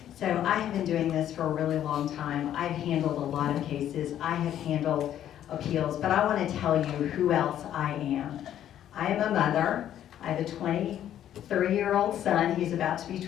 So I have been doing this for a really long time. I've handled a lot of cases. I have handled appeals, but I want to tell you who else I am. I am a mother. I have a 23-year-old son. He's about to be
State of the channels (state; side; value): quieter; right; 11.0 dB